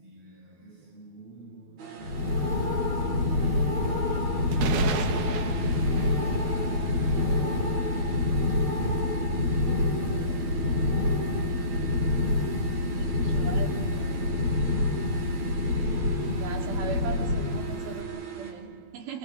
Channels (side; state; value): left; late; 12 ms